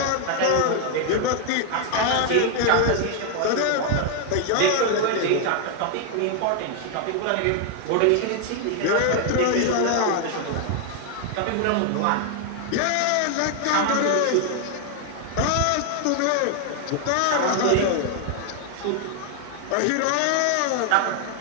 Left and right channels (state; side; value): different; both; correlation 0.00